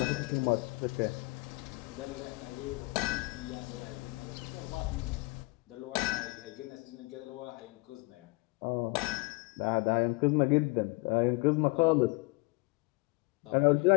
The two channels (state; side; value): quieter; right; 25.4 dB